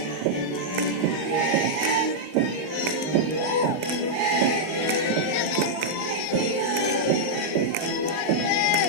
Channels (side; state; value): right; late; 19 ms